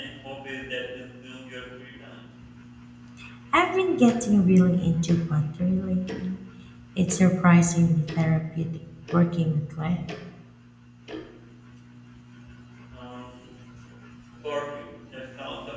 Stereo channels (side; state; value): both; identical; correlation 1.00